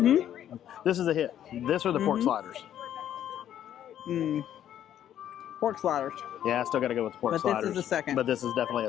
This is a hit. This or the pork sliders. Pork sliders. Yeah, I still got to go with the pork sliders. But this is a second. But this is definitely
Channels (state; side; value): quieter; right; 10.8 dB